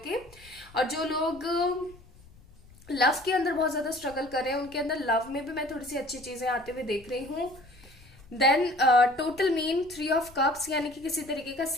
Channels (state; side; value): noise; left; rumble, 24 dB below the sound